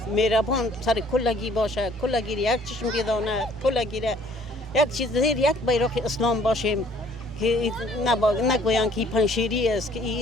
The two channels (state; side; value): normal; both; correlation 0.58